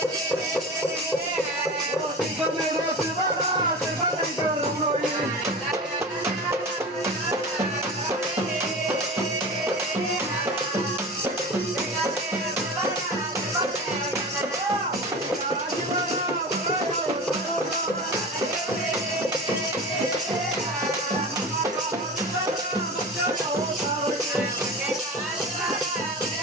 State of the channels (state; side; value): normal; both; correlation 0.32